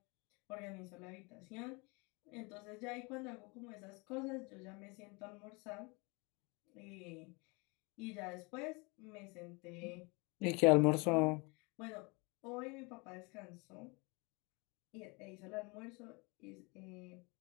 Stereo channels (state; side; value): quieter; right; 28.5 dB